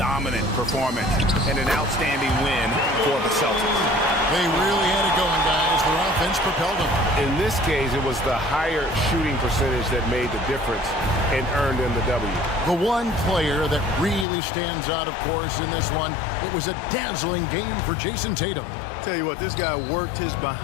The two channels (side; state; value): right; drops out; at 14.2 s